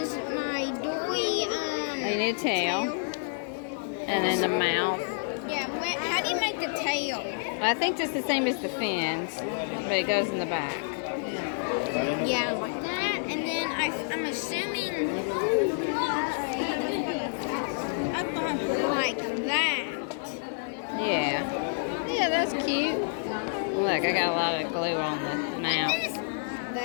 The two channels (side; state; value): right; silent; 59 dB below the other